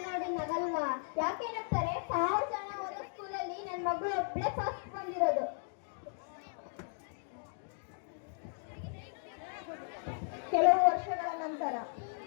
ನೋಡಿ ನಗಲ್ವಾ? ಯಾಕೆ ನಗ್ತಾರೆ? 1000 ಜನ ಓದೋ ಸ್ಕೂಲಲ್ಲಿ ನನ್ನ ಮಗಳು ಒಬ್ಳೆ ಫಸ್ಟ್ ಬಂದಿರೋದು. ಕೆಲವು ವರ್ಷಗಳ ನಂತರ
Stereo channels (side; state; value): right; silent; digital silence